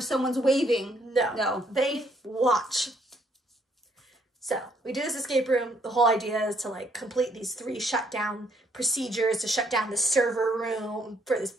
someone's waving. No. They watch. So, we do this escape room. The whole idea is to, like, complete these 3 shutdown procedures to shut down the server room for this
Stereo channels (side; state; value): both; normal; correlation 0.68